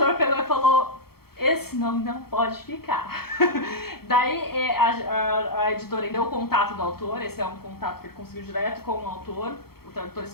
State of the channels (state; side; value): late; right; 0.95 ms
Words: pegou e falou... Esse nome não pode ficar. Daí a editora deu o contato do autor, esse é um contato que ele conseguiu direto com o autor. O tradutor